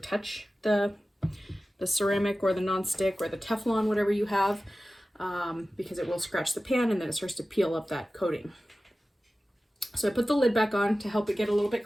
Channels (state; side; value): normal; both; correlation 0.95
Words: the ceramic or the non-stick or the Teflon, whatever you have, because it will scratch the pan and then it starts to peel up that coating. So I put the lid back on to help it get a little